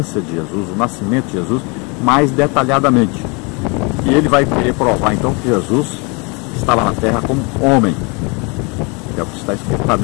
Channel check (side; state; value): right; quieter; 30.7 dB